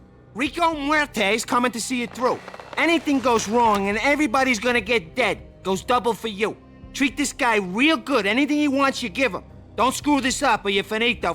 Rico Muerte's coming to see it through. Anything goes wrong and everybody's gonna get dead. Goes double for you. Treat this guy real good. Anything he wants, you give him. Don't screw this up or you're finito,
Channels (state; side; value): identical; both; correlation 1.00